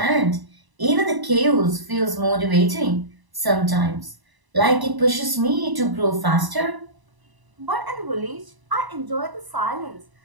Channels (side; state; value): left; late; 1.0 ms